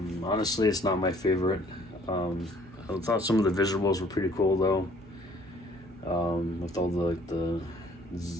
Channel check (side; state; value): both; normal; correlation 0.59